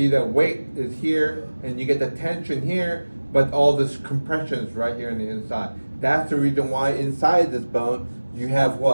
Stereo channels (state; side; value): inverted; both; correlation -1.00